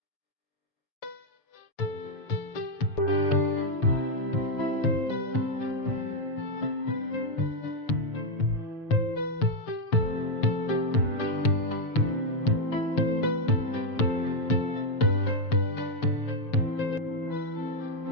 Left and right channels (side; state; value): right; late; 6.9 ms